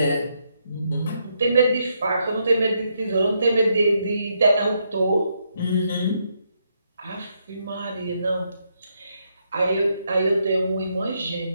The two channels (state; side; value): inverted; both; correlation -0.78